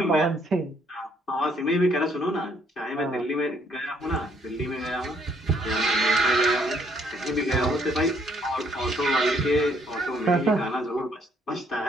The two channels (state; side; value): normal; both; correlation 0.67